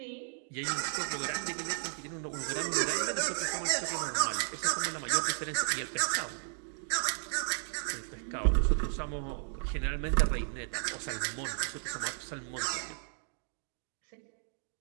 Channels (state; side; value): silent; left; 55 dB below the other